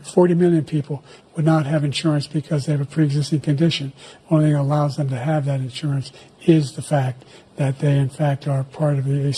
million people would not have insurance because they have a pre-existing condition. Only thing that allows them to have that insurance is the fact that they, in fact, are part of the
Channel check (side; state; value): both; identical; correlation 1.00